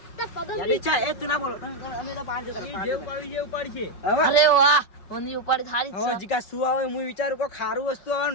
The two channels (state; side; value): late; right; 5.3 ms